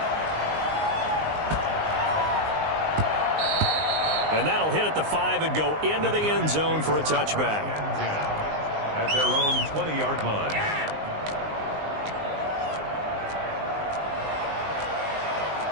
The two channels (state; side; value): late; left; 19 ms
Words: And that'll hit at the 5 and go into the end zone for a touchback. At their own 20-yard line.